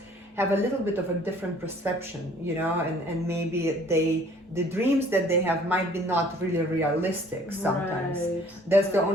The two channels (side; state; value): both; normal; correlation 0.56